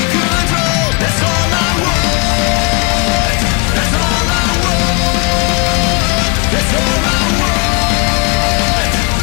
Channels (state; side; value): quieter; right; 30.7 dB